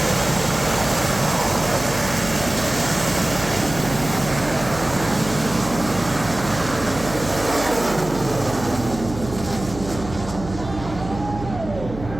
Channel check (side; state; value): right; noise; hum, 11 dB below the sound